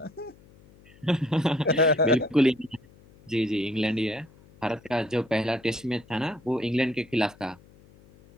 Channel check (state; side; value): noise; left; hum, 26 dB below the sound